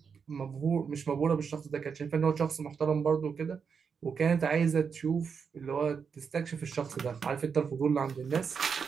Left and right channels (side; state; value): left; quieter; 6.2 dB